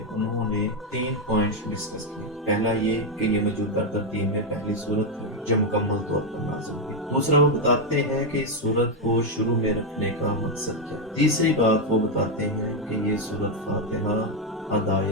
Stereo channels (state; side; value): normal; both; correlation 0.03